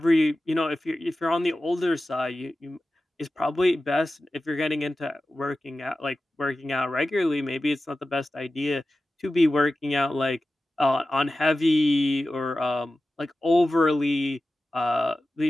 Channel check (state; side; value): normal; both; correlation 0.94